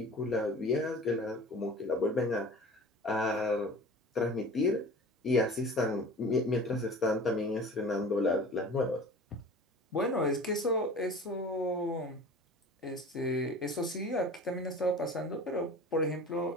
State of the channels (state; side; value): normal; both; correlation 0.40